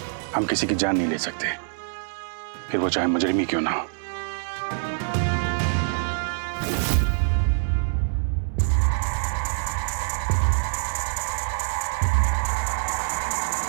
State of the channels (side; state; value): left; silent; 62 dB below the other